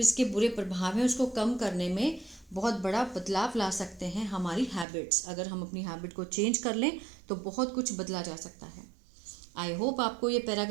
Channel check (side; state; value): left; drops out; at 4.9 s